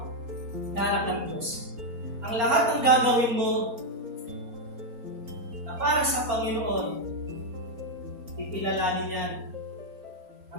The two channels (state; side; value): late; left; 4.3 ms